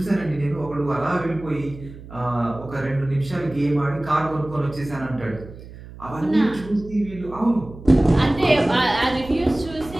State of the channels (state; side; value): noise; right; hum, 16 dB below the sound